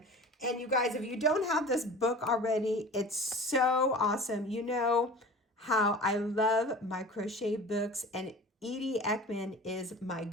And you guys, if you don't have this book already, it's so awesome. You know how I love my crochet books, and Edie Ekman is my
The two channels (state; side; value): normal; both; correlation 0.39